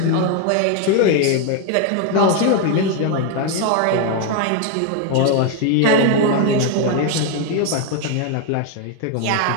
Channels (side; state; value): both; different; correlation 0.01